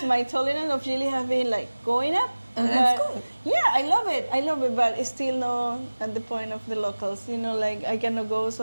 my tolerance of chili have been like going up. That's But, good. Yeah, I love it, but it's still not at the point of the locals. Like I cannot go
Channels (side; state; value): both; inverted; correlation -1.00